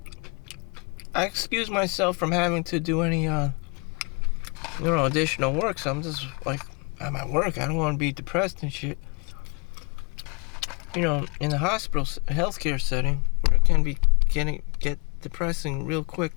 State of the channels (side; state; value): right; quieter; 32.7 dB